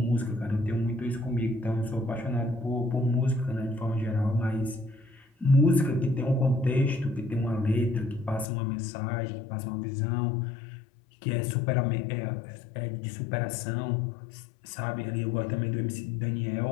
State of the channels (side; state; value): right; drops out; at 8.5 s